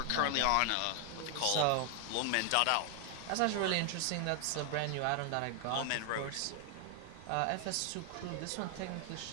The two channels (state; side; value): different; both; correlation 0.00